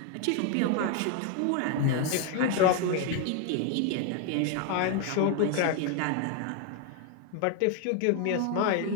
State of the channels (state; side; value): different; both; correlation 0.01